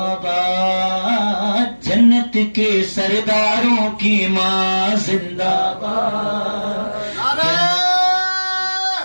باد، جنت کے سرداروں کی ماں زندہ باد۔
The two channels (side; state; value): both; inverted; correlation -1.00